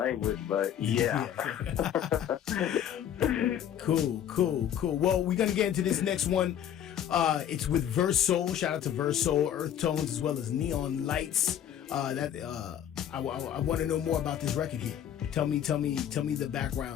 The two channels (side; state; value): right; quieter; 9.9 dB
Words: but yeah. Cool. Well, we're gonna get into this next one. It's with Verse Soul. Shout out to Verse Soul, Earth Tones, as well as Neon Lights. I want to know more about this record here. Tell me the